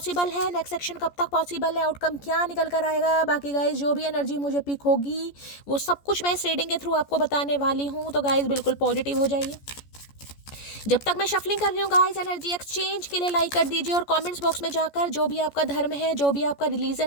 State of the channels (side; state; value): right; late; 14 ms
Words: है, नेक्स्ट एक्शन कब तक पॉसिबल है, आउटकम क्या निकल कर आएगा। बाकी गाइज जो भी एनर्जी मुझे पिक होगी वो सब कुछ मैं इस रीडिंग के थ्रू आपको बताने वाली हूँ। तो गाइज बिल्कुल पॉजिटिव हो जाइए। जब तक मैं शफलिंग कर रही हूँ गाइस, एनर्जी एक्सचेंज के लिए लाइक कर दीजिए और कमेंट्स बॉक्स में जाकर जो भी आपका धर्म है, जो भी आपका